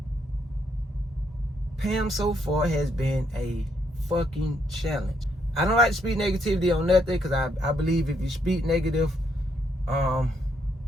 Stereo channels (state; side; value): normal; both; correlation 0.74